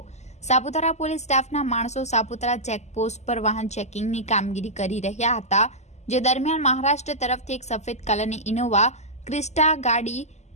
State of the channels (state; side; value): late; right; 0.33 ms